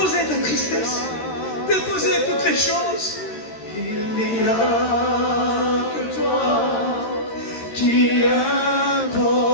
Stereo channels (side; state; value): right; late; 13 ms